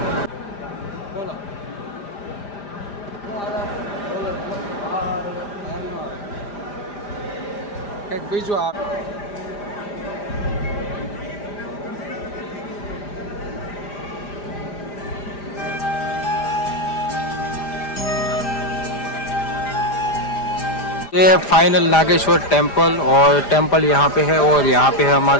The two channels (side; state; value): right; late; 5.0 ms